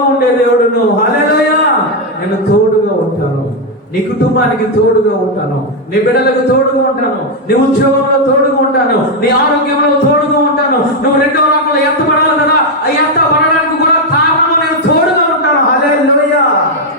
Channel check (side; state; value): both; normal; correlation 0.03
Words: ఉండే దేవుడును. హల్లెలూయా. నేను తోడుగా ఉంటాను, నీ కుటుంబానికి తోడుగా ఉంటాను, నీ బిడ్డలకు తోడుగా ఉంటాను, నీ ఉద్యోగంలో తోడుగా ఉంటాను, నీ ఆరోగ్యంలో తోడుగా ఉంటాను. నువ్వు రెండవ రాకడలో ఎత్తబడాలి కదా, ఆ ఎత్తబడడానికి కూడా కారణం నేను తోడుగా ఉంటాను. హల్లెలూయా.